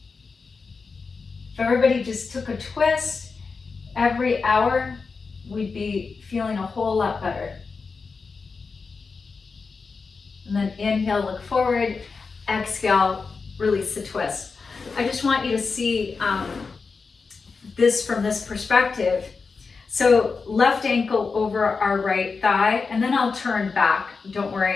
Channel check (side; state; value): right; quieter; 4.7 dB